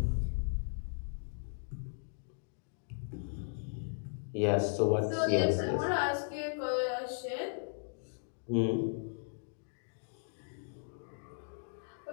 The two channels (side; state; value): right; silent; digital silence